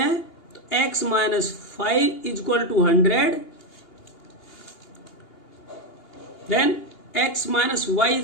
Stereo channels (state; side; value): late; right; 2.8 ms